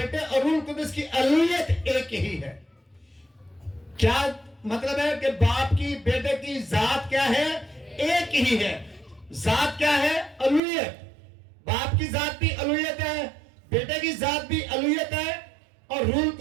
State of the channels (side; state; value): left; drops out; at 10.6 s